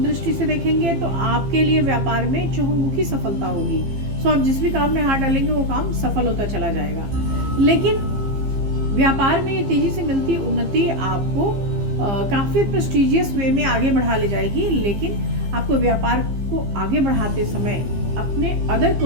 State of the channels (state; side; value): late; left; 15 ms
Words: दृष्टि से देखेंगे तो आपके लिए व्यापार में चहुमुखी सफलता होगी। सो आप जिस भी काम में हाथ डालेंगे वो काम सफल होता चला जाएगा। लेकिन व्यापार में ये तेजी से मिलती उन्नति आपको काफी प्रेस्टिजियस वे में आगे बढ़ा ले जाएगी, लेकिन आपको व्यापार को आगे बढ़ाते समय अपने अदर